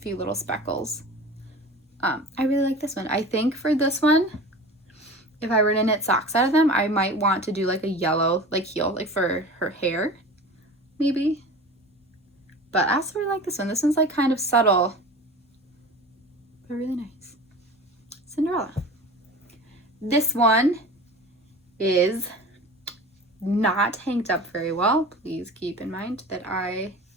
little speckles. I really like this one. I think for this one, if I were to knit socks out of them, I might want to do like a yellow like heel, like for her hair, maybe. But I also really like this one. This one's like kind of subtle, but really nice. Cinderella. This one is not hanked up very well. Please keep in mind that I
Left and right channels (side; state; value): both; normal; correlation 0.37